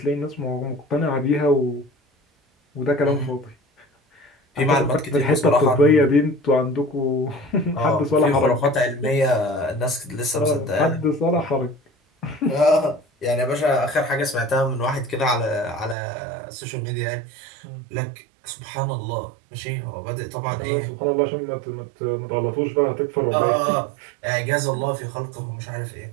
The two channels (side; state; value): left; drops out; at 16.0 s